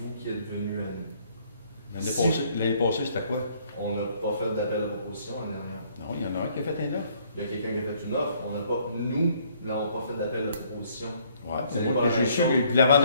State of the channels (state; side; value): inverted; both; correlation -0.64